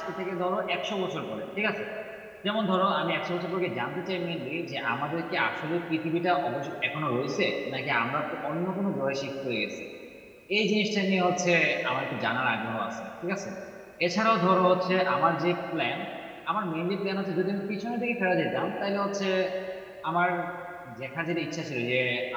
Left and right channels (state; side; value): identical; both; correlation 1.00